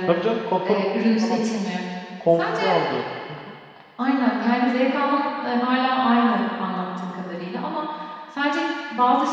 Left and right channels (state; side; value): identical; both; correlation 1.00